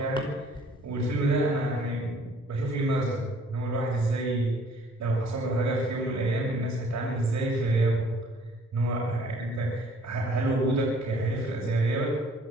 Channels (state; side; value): normal; both; correlation 0.57